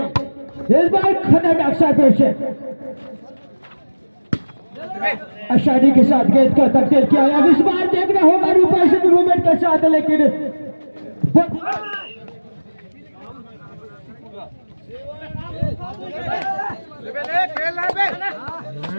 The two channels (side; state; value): both; inverted; correlation -1.00